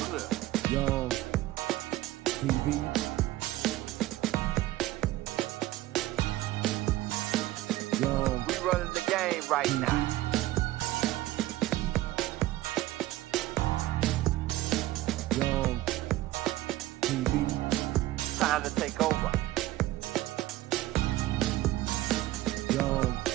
clear. Young TV. Young. We running the game right now. Young TV. Time to take over. Young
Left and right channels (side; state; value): left; quieter; 16.3 dB